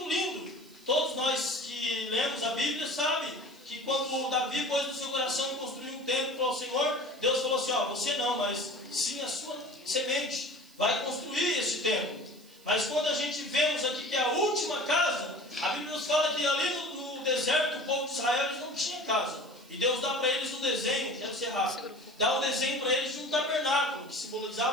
lindo. Todos nós que lemos a Bíblia sabem que quando Davi pôs no seu coração construir um templo para o Senhor, Deus falou assim: ó, você não, mas sim a sua semente vai construir esse templo. Mas quando a gente vemos aqui que é a última casa, a Bíblia nos fala que ali no deserto, o povo de Israel, eles não tinha casa. E Deus dá para eles um desenho, quero ser rápido, dá um desenho para eles de um tabernáculo, que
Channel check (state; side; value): noise; right; hiss, 26 dB below the sound